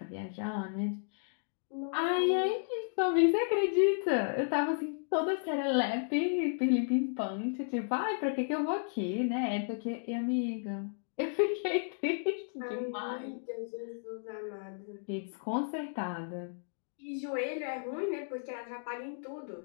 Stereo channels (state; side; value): silent; right; digital silence